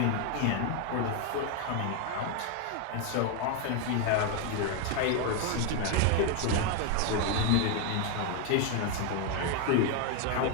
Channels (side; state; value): both; different; correlation 0.01